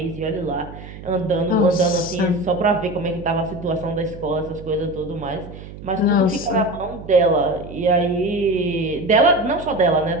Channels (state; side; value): noise; right; hum, 14 dB below the sound